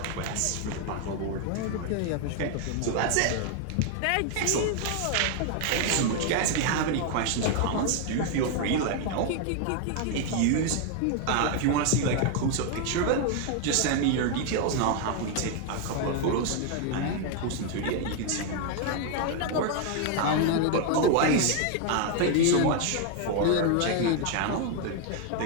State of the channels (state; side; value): different; both; correlation 0.00